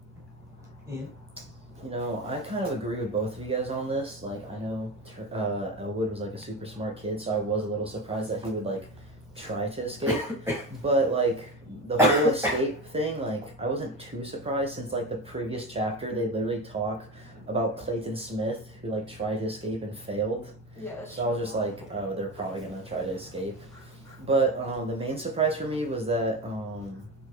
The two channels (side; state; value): both; normal; correlation 0.24